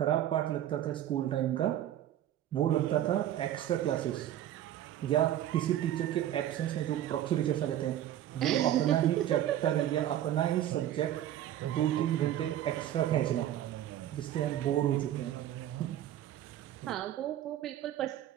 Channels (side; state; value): left; quieter; 12.1 dB